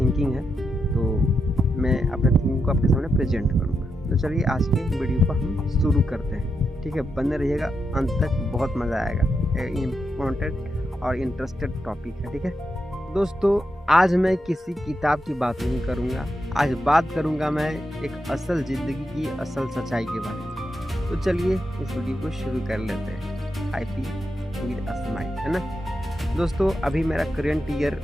है तो मैं अपने थिंकिंग को आपके सामने प्रेजेंट करूँगा। तो चलिए आज के वीडियो को हम शुरू करते हैं। ठीक है, बने रहिएगा अंत तक, बहुत मज़ा आएगा। इम्पोर्टेंट और इंटरेस्टेड टॉपिक है। ठीक है दोस्तों, आज मैं किसी किताब की बात नहीं करूँगा, आज बात करूँगा मैं एक असल ज़िंदगी की असल सच्चाई के बारे में। तो चलिए इस वीडियो को शुरू कर लेते हैं। I P with a smile, है ना दोस्तों। अभी मेरा करंट ईयर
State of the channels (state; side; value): normal; both; correlation 0.85